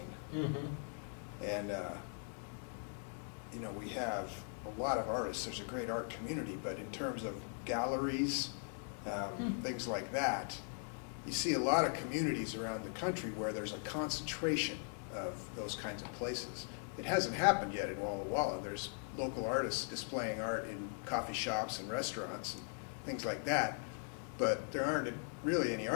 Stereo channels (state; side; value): silent; right; 51 dB below the other